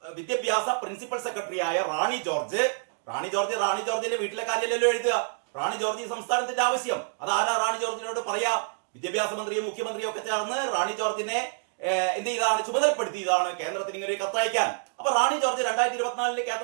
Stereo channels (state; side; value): silent; left; digital silence